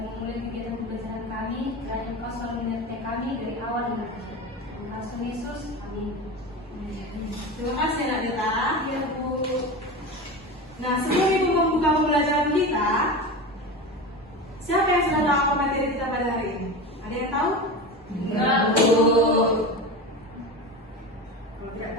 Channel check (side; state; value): both; normal; correlation 0.26